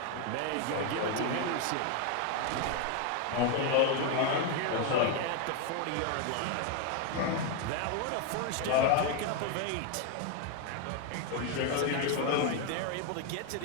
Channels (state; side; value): different; both; correlation 0.01